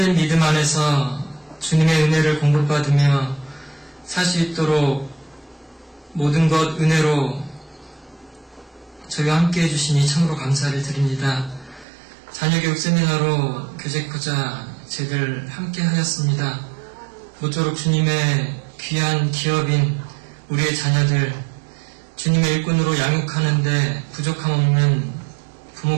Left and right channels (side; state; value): left; drops out; at 11.9 s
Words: 믿음 안에서 주님의 은혜를 공급받으며 살 수 있도록 모든 것 은혜로 저희와 함께 해주시니 참으로 감사를 드립니다. 자녀교육 세미나로 교제코자 제들 함께 하였습니다. 모쪼록 주님의 귀한 기업인 우리의 자녀들 주님의 일꾼으로 양육하는데 부족함 없는